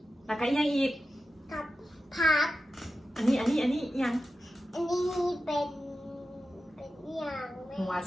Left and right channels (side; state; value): both; normal; correlation 0.92